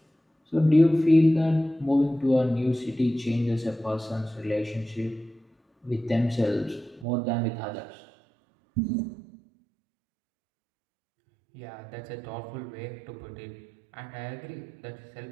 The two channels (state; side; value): drops out; left; at 7.1 s